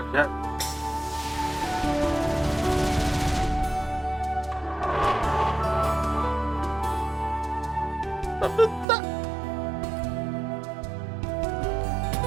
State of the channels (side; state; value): left; drops out; at 8.8 s